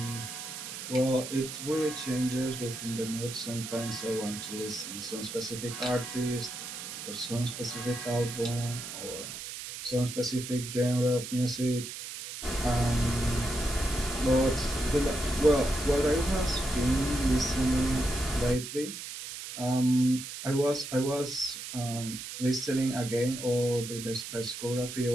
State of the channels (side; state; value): right; noise; hiss, 9 dB below the sound